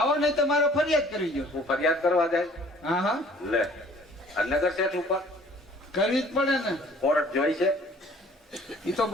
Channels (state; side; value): normal; both; correlation 0.54